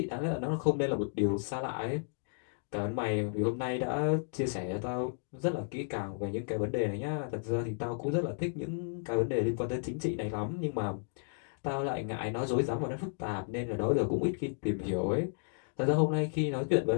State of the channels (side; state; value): right; silent; digital silence